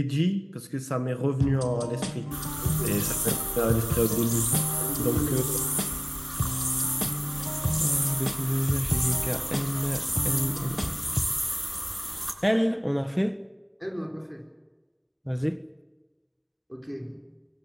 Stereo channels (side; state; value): both; identical; correlation 1.00